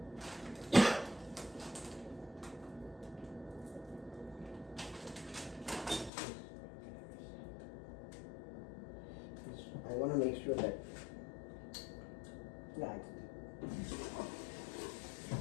I want to make sure that, yeah,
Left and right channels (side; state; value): right; drops out; at 6.1 s